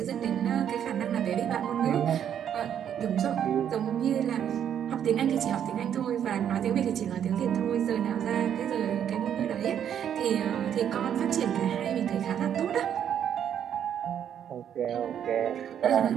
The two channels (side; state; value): left; quieter; 9.3 dB